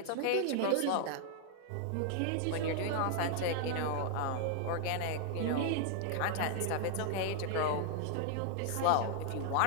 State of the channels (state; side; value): different; both; correlation 0.00